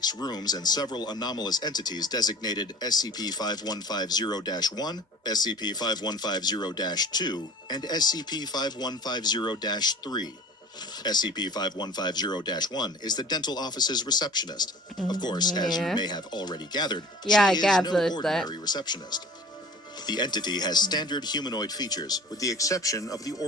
rooms and several anomalous entities designated SCP-5150-1, SCP-5150-2, and SCP-5150-3. SCP-5150-1 is the dental office's receptionist. Of course, as you may have already gathered, Yeah, I she is no gathered ordinary receptionist. The entity has standard humanoid features, with the exception of the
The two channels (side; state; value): both; normal; correlation 0.43